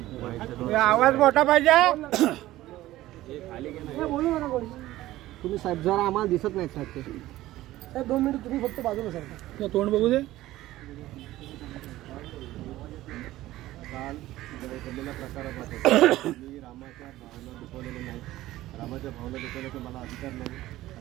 आवाज मोठा पाहिजे. तुम्ही साहेब जरा आम्हाला दिसत नाही साहेब ते. 2 मिनिट तुम्ही फक्त बाजूला सरका. तोंड बघू दे. काल घडलेल्या प्रकारामध्ये मी रामाच्या भावना दुखवलेल्या नाही. रामाच्या भावना दुखवण्याचा मला अधिकार नाही.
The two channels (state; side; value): quieter; left; 15.9 dB